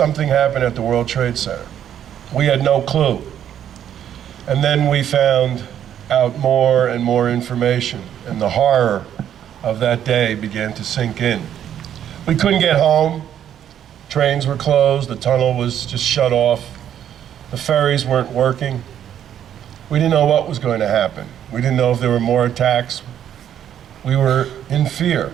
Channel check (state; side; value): quieter; left; 10.0 dB